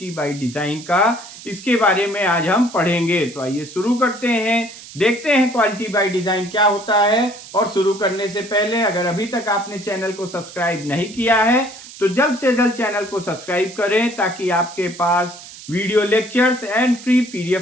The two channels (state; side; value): noise; right; hiss, 16 dB below the sound